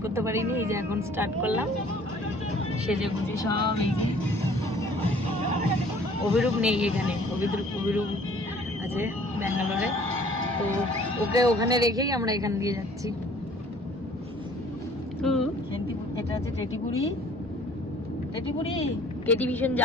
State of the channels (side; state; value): both; normal; correlation 0.54